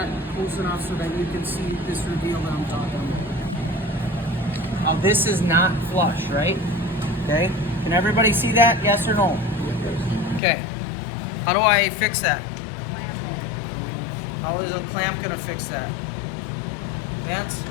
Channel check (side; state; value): right; drops out; at 10.4 s